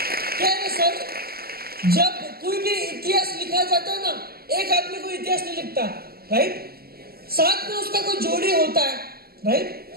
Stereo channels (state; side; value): late; left; 0.45 ms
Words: क्या है सर, जब कोई भी इतिहास लिखा जाता है ना, एक आदमी को इतिहास नहीं लिखता, राइट, साथ में उसका कोई जोड़ी होता है,